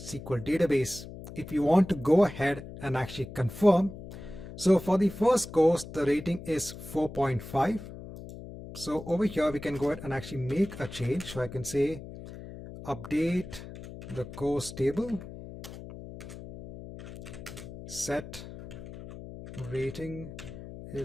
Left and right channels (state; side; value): noise; left; hum, 12 dB below the sound